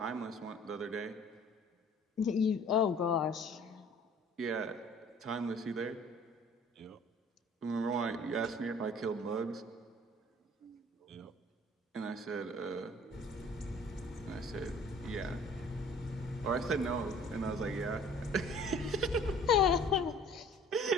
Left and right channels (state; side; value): normal; both; correlation 0.51